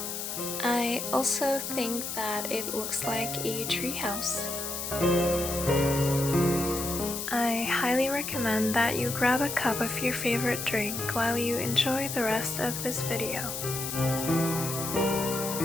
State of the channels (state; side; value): noise; left; hiss, 5 dB below the sound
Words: I also think that it looks like a treehouse. I highly recommend that you grab a cup of your favorite drink while you enjoy the rest of this video.